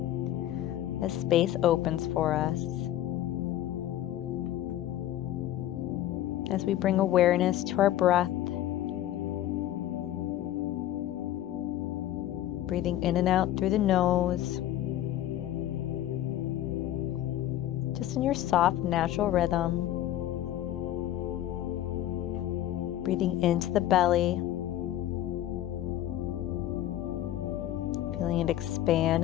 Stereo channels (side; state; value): right; quieter; 13.0 dB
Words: as space opens for us. As we bring awareness to our breath, breathing in and out through the nose, just in your soft, natural rhythm. Breathing into the belly, feeling it expand